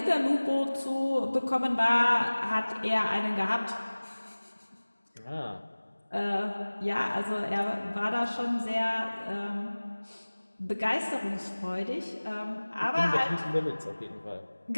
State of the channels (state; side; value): inverted; both; correlation -1.00